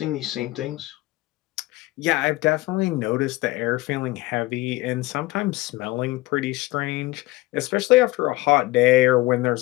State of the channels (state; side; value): quieter; right; 20.0 dB